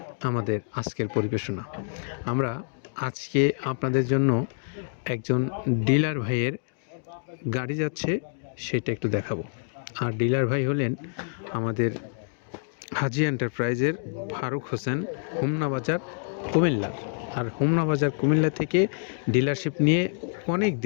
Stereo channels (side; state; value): right; silent; digital silence